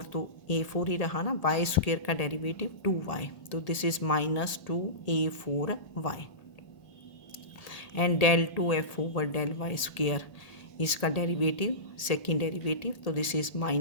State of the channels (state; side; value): late; right; 1.8 ms